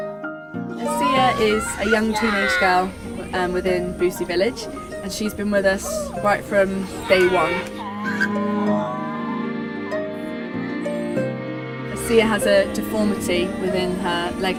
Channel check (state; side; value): identical; both; correlation 1.00